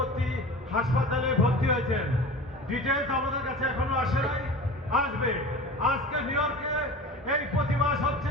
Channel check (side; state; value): both; normal; correlation 0.35